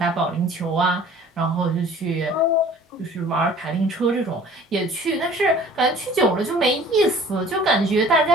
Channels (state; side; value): normal; both; correlation 0.49